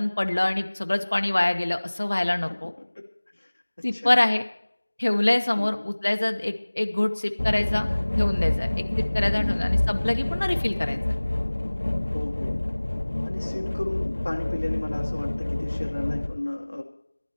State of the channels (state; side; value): inverted; both; correlation -1.00